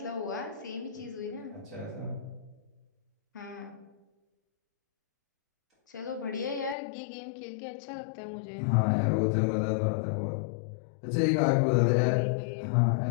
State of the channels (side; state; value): right; drops out; at 6.8 s